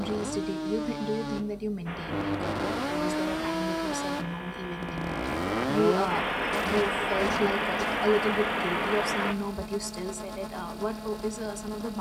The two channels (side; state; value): both; identical; correlation 1.00